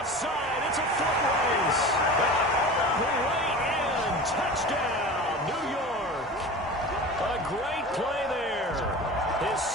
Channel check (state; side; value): normal; both; correlation 0.34